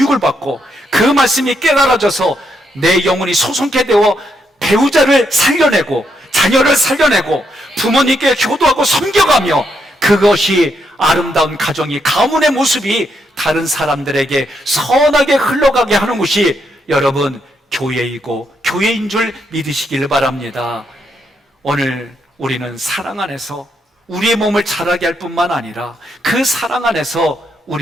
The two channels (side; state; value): both; normal; correlation 0.78